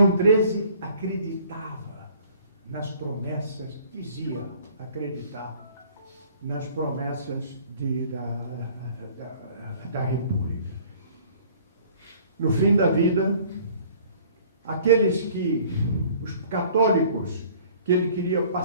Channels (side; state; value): both; inverted; correlation -0.53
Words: XIII acreditava nas promessas, dizia acreditar nas promessas da República. No fim da vida, os católicos que ele queria